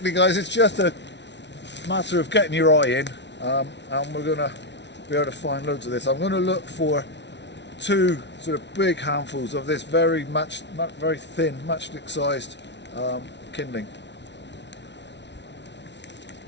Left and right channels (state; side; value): late; right; 0.51 ms